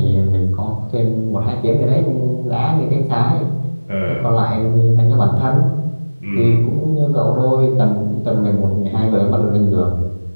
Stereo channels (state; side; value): inverted; both; correlation -1.00